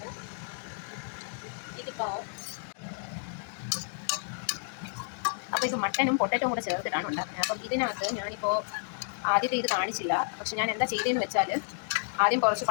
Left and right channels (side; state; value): right; silent; digital silence